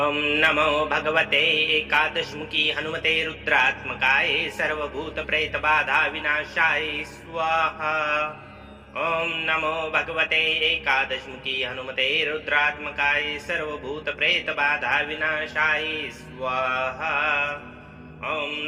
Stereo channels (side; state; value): both; identical; correlation 1.00